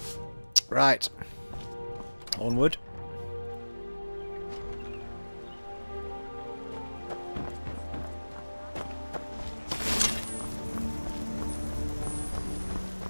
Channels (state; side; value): inverted; both; correlation -1.00